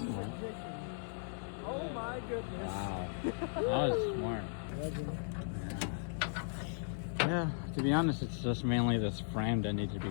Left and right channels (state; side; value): silent; right; digital silence